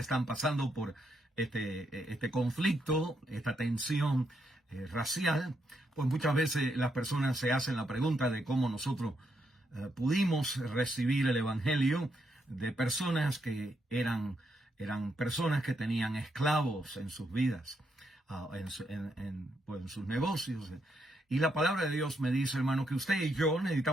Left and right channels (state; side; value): normal; both; correlation 0.79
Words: pasando por este conflicto, esta tensión racial, pues muchas veces las personas se hacen la pregunta de cómo nosotros pudimos recibir el Evangelio de personas que eran personas que tenían esclavos en sus vidas, en sus negocios. Y la palabra de Dios me dice, hermano, que usted y yo